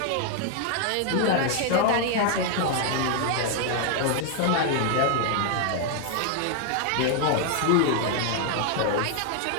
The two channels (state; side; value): different; both; correlation 0.00